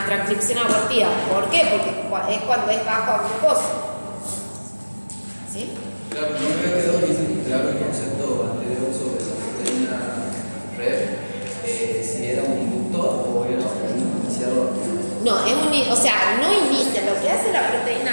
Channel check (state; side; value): inverted; both; correlation -1.00